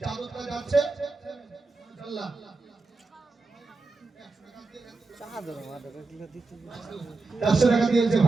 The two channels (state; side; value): quieter; left; 3.7 dB